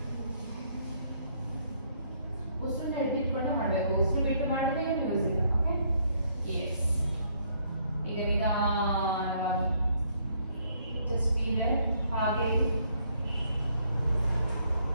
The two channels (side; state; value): both; inverted; correlation -0.68